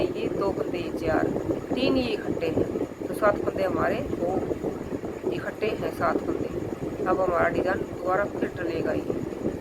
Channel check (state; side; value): identical; both; correlation 1.00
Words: ये, दो फंदे ये, 4, 3 ये इकट्ठे हैं, तो 7 फंदे हमारे वो इकट्ठे हैं 7 फंदे। अब हमारा डिज़ाइन दोबारा फिर डलेगा ये।